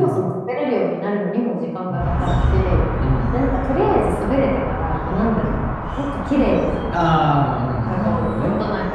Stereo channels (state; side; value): identical; both; correlation 1.00